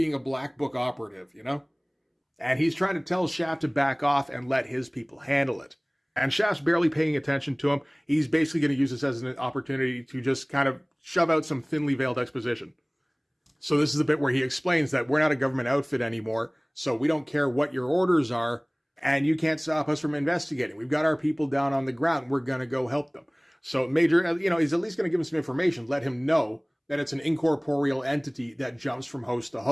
a Black Book operative, And he's trying to tell Shaft to back off and let his people handle it. And Shaft's barely paying attention to him. He's basically going to use this as an opportunity to just kind of shove out some thinly veiled exposition. So this is the bit where he explains that we're not a government outfit anymore, so we don't care what your orders are, and you can't stop us from investigating. We've got our people down on the ground. We're going to go help them. So Major, he's at least going to give him some information, let him know that it's an incorporeal entity that jumps from host to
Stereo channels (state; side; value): identical; both; correlation 1.00